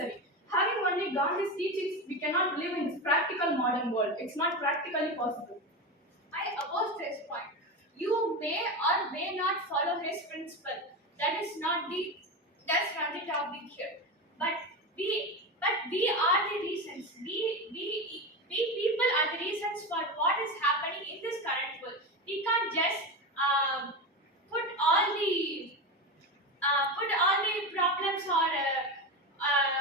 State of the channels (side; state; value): both; normal; correlation 0.20